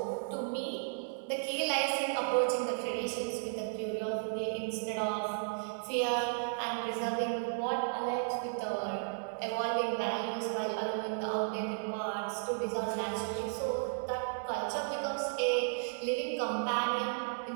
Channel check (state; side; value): silent; left; digital silence